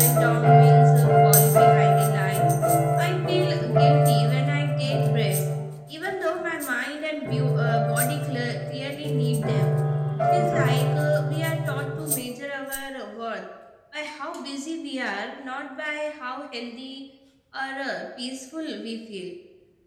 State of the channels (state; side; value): identical; both; correlation 1.00